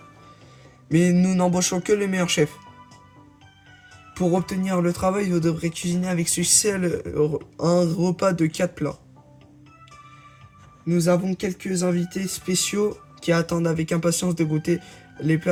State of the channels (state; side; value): identical; both; correlation 1.00